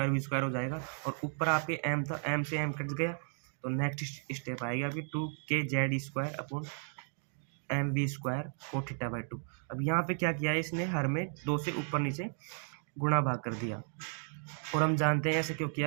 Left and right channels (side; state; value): left; silent; 55 dB below the other